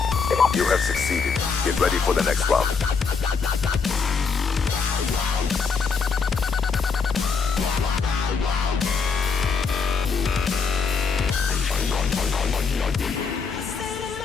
Get ready for the next round.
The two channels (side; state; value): right; quieter; 5.3 dB